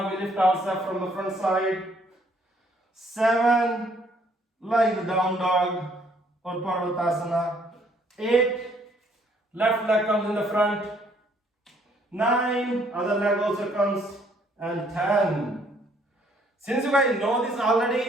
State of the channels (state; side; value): normal; both; correlation 0.65